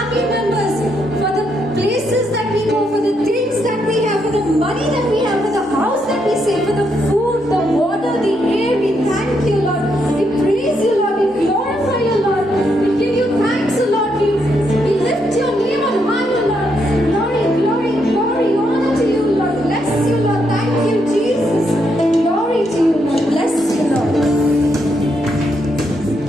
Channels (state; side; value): normal; both; correlation 0.78